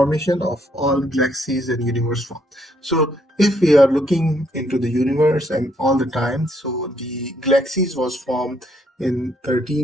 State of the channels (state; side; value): normal; both; correlation 0.71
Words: of all galaxies and universe form. So if we are looking into the universe and all the time, so the galaxies was formed in